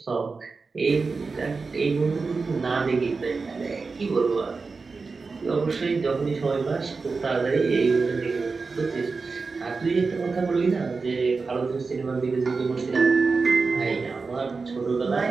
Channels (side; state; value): left; quieter; 4.4 dB